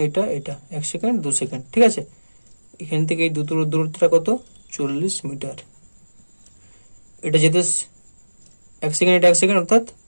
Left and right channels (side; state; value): both; inverted; correlation -1.00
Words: এটা 1 সেকেন্ড 2 সেকেন্ড, ঠিক আছে। এখান থেকে এই দূরত্বটা কত 40 মিটার, এটা যেতে 1 সেকেন্ড, এটা 1 সেকেন্ড অর্থাৎ